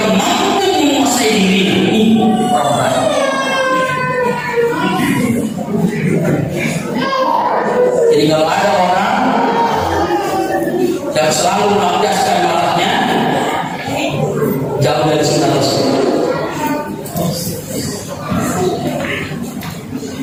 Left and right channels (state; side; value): identical; both; correlation 1.00